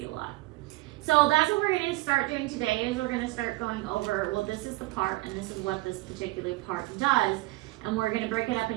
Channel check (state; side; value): quieter; left; 20.8 dB